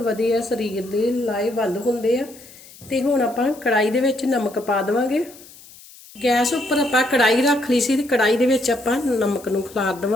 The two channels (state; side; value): noise; left; hiss, 21 dB below the sound